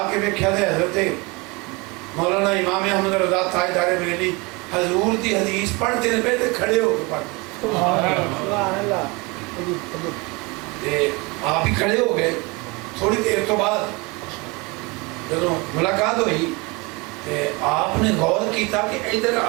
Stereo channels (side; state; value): left; quieter; 26.5 dB